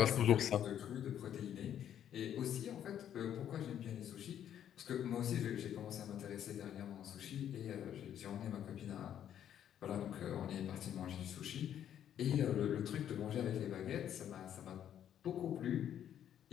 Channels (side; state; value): right; quieter; 10.1 dB